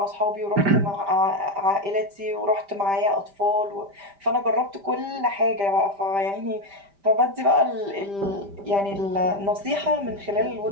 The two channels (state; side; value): late; left; 5.0 ms